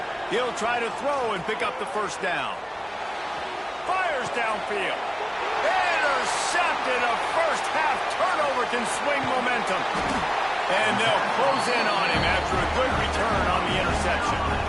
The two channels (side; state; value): both; identical; correlation 1.00